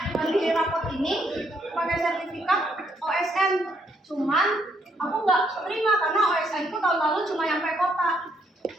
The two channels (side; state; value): both; normal; correlation 0.72